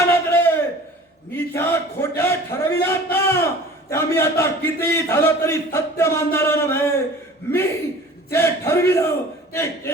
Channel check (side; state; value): both; normal; correlation 0.44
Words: नजरेत मी ज्या खोट्या ठरविल्यात ना, त्या मी आता किती झालं तरी सत्य मानणारा नव्हे. मी जे ठरविलं ते